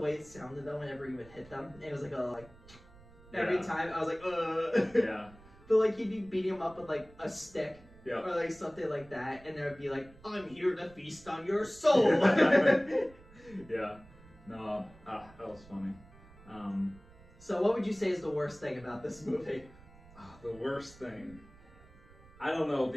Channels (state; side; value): noise; right; rumble, 23 dB below the sound